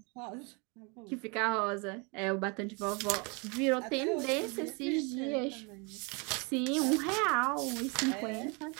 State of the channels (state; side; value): quieter; left; 31.8 dB